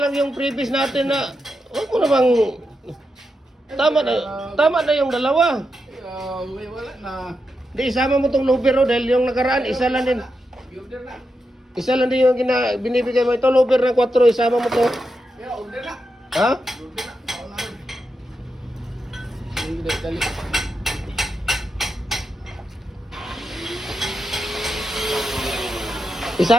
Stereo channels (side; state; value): both; normal; correlation 0.86